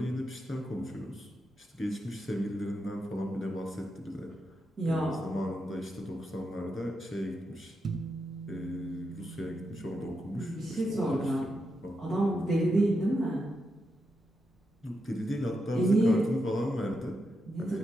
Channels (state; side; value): normal; both; correlation 0.85